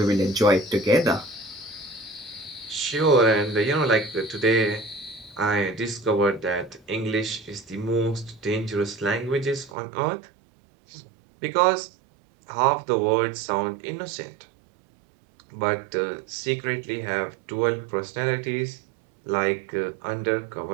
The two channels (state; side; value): drops out; left; at 9.8 s